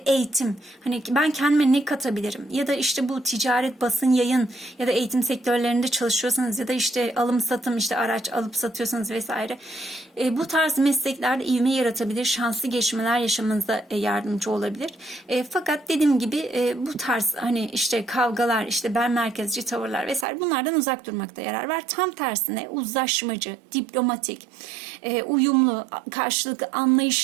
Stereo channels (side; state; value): left; drops out; at 20.2 s